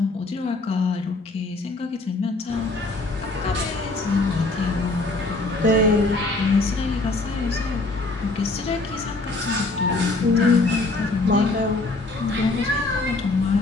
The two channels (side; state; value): right; quieter; 3.2 dB